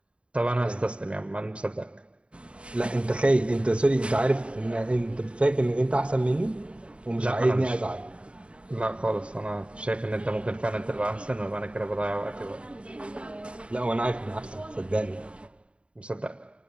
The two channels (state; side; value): late; left; 0.058 ms